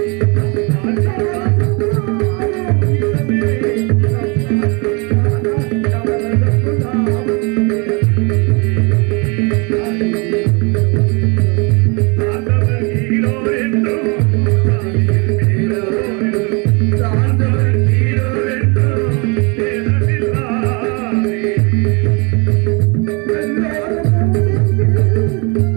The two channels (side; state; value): left; quieter; 30.8 dB